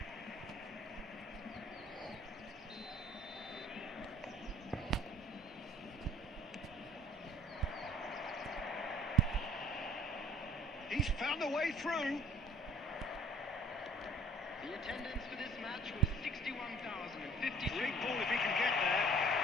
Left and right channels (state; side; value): normal; both; correlation 0.53